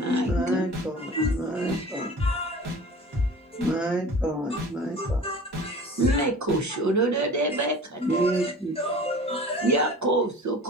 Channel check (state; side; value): normal; both; correlation 0.41